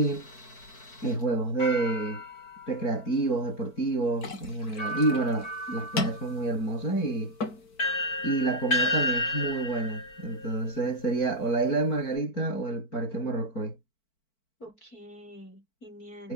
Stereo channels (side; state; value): right; late; 4.5 ms